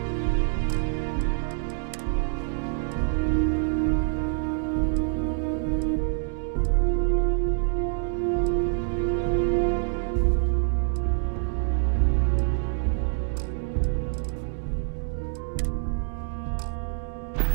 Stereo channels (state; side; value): silent; left; 61 dB below the other